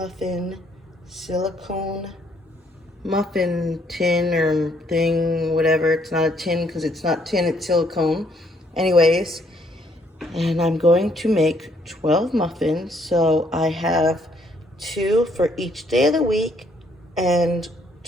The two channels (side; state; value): both; normal; correlation 0.68